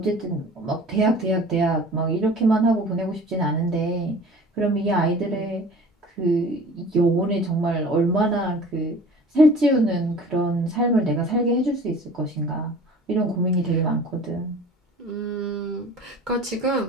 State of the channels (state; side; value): normal; both; correlation 0.44